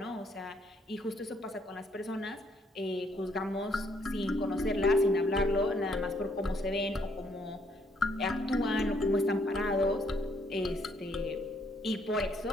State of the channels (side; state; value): both; normal; correlation 0.69